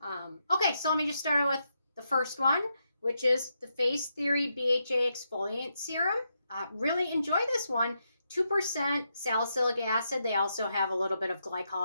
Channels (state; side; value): inverted; both; correlation -0.82